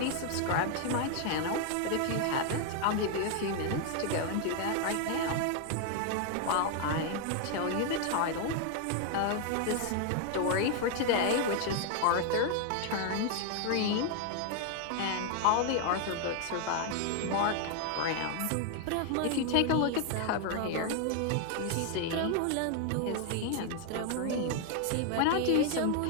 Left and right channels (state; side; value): different; both; correlation 0.00